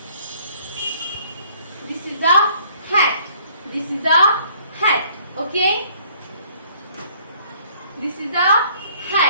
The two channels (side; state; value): both; inverted; correlation -0.60